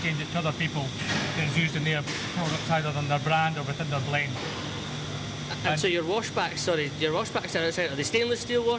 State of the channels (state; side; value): identical; both; correlation 1.00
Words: it to other people that is used in their products, either on their brand or within their blend. And so your washbacks are outside. Are they stainless steel